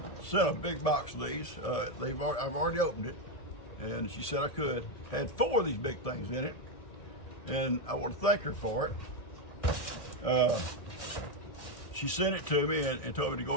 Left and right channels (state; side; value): late; right; 1.7 ms